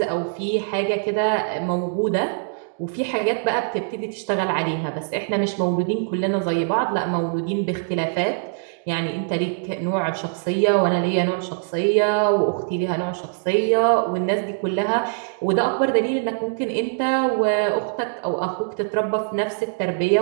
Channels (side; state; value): left; silent; digital silence